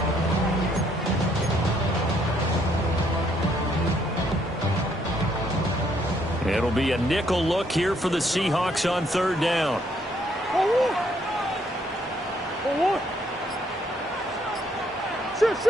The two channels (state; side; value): normal; both; correlation 0.69